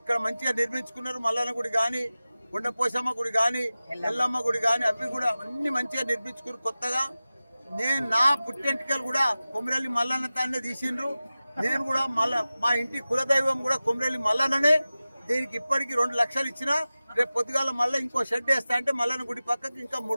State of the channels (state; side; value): inverted; both; correlation -0.96